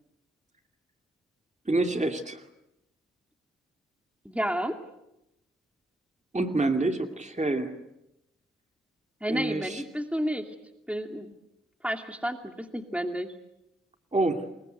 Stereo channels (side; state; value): both; normal; correlation 0.80